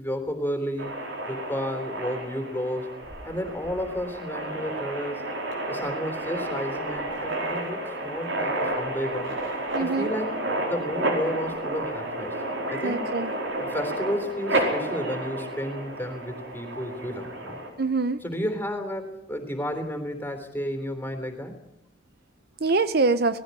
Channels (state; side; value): normal; both; correlation 0.23